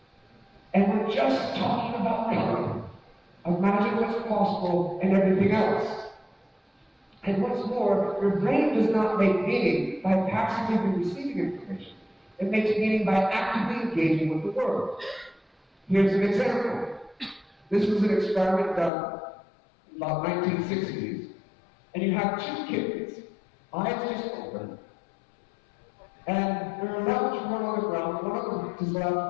And we're just talking about color. Imagine what's possible and everything else. And what's more, your brain does not make meaning by passively receiving information. It makes meaning by actively engaging with the world. Here's an example. This was an experiment done in about 1960s. And you have two kittens, eyes just open, and they're allowed to run on the ground. One of them is allowed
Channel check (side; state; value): right; drops out; at 18.9 s